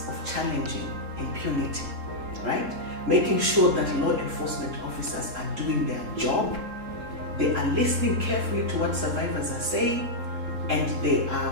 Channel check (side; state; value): left; late; 3.7 ms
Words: of challenging impunity, right? Making sure that law enforcement officers are doing their job, they are listening carefully to what survivors are saying, and they